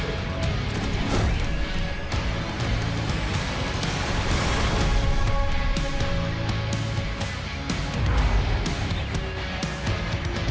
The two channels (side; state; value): both; identical; correlation 1.00